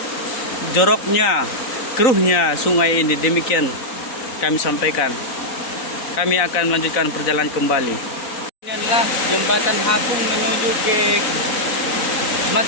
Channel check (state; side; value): late; right; 4.0 ms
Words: joroknya, keruhnya sungai ini. Demikian kami sampaikan. Kami akan melanjutkan perjalanan kembali. Ini adalah jembatan Hapung menuju ke